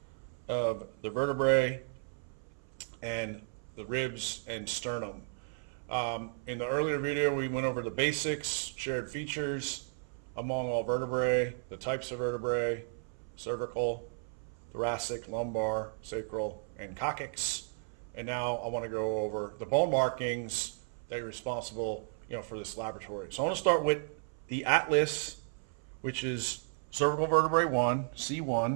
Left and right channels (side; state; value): left; silent; 55 dB below the other